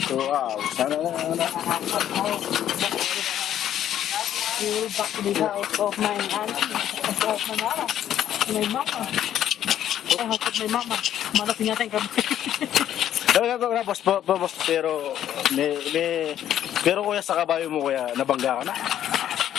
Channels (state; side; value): quieter; right; 11.0 dB